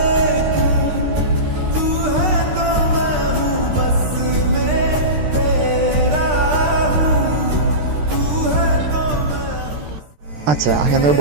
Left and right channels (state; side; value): late; left; 13 ms